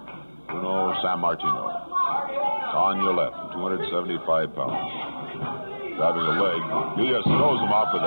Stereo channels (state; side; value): inverted; both; correlation -1.00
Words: Bruno San Martino. On your left, 275 pounds. Grabbing a leg. He just throws him off with